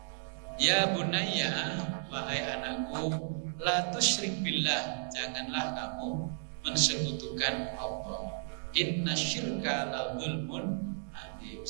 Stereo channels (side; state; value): left; silent; digital silence